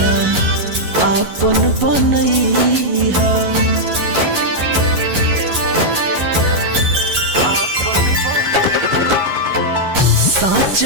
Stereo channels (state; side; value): late; left; 11 ms